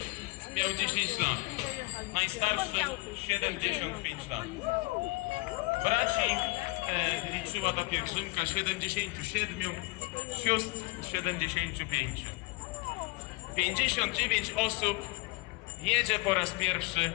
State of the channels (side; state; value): right; quieter; 24.6 dB